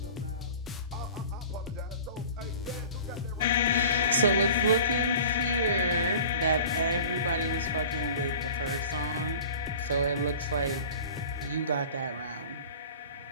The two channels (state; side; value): inverted; both; correlation -0.41